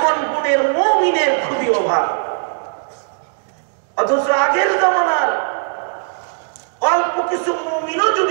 গুণের মুমিনের খুবই অভাব। অথচ আগের জমানার অল্প কিছু মুমিনও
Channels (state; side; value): silent; left; digital silence